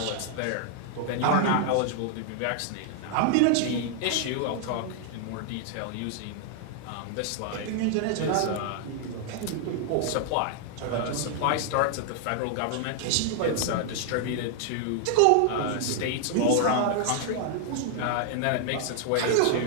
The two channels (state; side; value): different; both; correlation 0.00